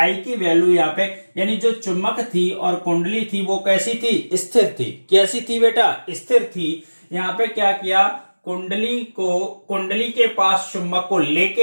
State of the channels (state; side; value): inverted; both; correlation -1.00